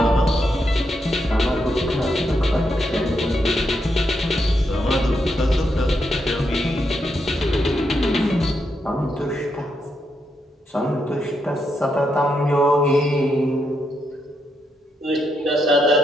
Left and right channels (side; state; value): both; normal; correlation 0.81